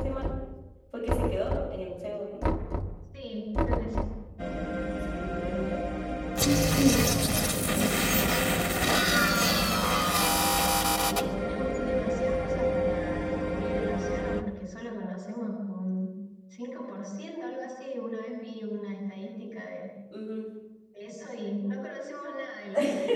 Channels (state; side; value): identical; both; correlation 1.00